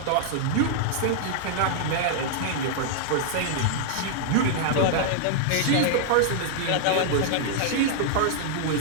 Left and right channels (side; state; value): both; different; correlation -0.01